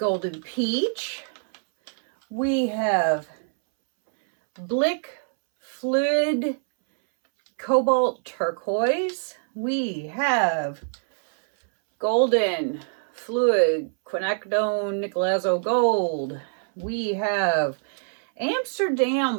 Peach. We have Blick Fluid Cobalt Turquoise. We have Golden Fluid Quinacridone Nicolazo Gold. We have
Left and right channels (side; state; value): left; silent; 62 dB below the other